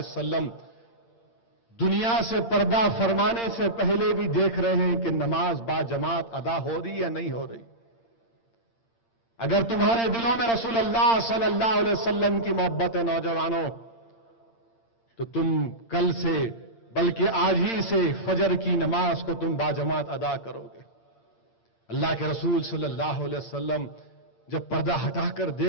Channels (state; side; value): late; right; 8.7 ms